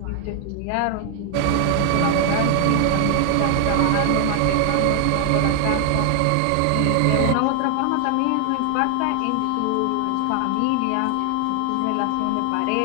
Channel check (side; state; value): both; different; correlation 0.00